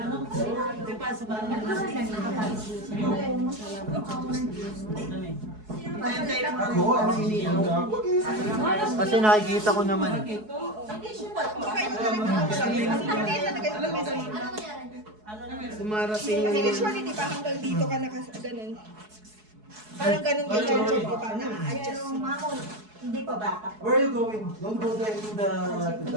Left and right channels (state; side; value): late; left; 4.7 ms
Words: Di pa, sa bahay. Ako, Kasi nakikita ko naman. Dumarating kasi usually di ba hanggang dito ka ganun. Parang ganun kay Jojo, di ba? Na-adjust. Pero mamon, hindi pa bata. where are you going? Don't go there to the